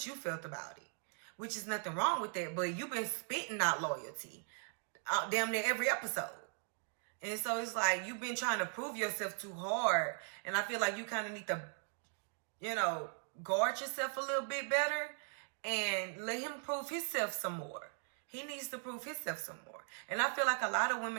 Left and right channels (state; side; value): silent; left; 52 dB below the other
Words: you felt about it. which is nothing wrong with that. But you've been spitting out loyalty damn near every episode. And so it's like you've been trying to prove yourself too hard. And I feel like you kind of need to, you know, guard yourself a little bit better and let him prove himself some more. He needs to prove himself some more. And I feel like a lot of